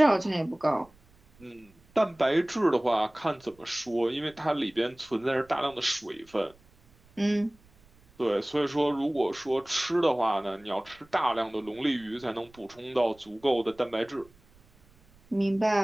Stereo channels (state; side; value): noise; right; rumble, 29 dB below the sound